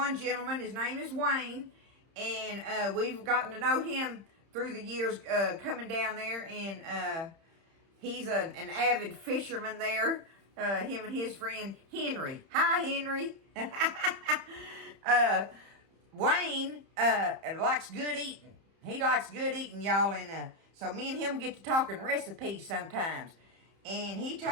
gentleman, his name is Wayne, and we've gotten to know him through the years coming down there, and he's an avid fisherman there, him and his friend Henry. Hi, Henry. Wayne likes good eating. He likes good eating, y'all, and so me and him get to talking recipes sometimes. And he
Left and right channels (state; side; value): late; left; 30 ms